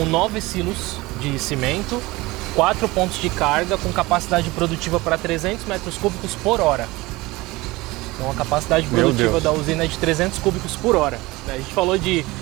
9 silos de cimento, 4 pontos de carga com capacidade produtiva para 300 metros cúbicos por hora. Então a capacidade produtiva da usina é de 300 cúbicos por hora. A gente falou de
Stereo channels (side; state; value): left; quieter; 21.0 dB